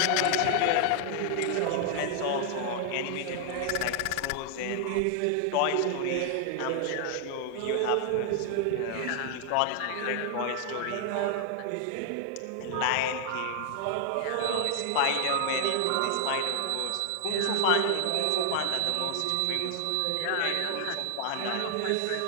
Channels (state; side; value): different; both; correlation 0.00